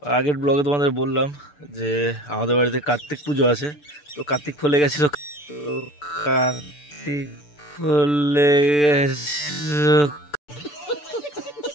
আগের ব্লগে তোমাদের বললাম যে আমাদের বাড়িতে কার্তিক পুজো আছে। তো কার্তিক ফুলে গেছিলো,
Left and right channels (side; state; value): right; late; 6.8 ms